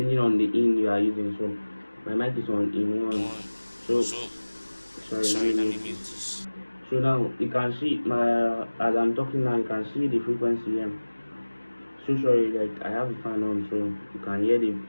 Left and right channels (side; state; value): both; inverted; correlation -1.00